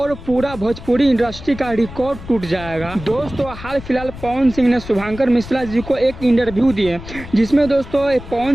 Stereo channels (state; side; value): noise; left; rumble, 14 dB below the sound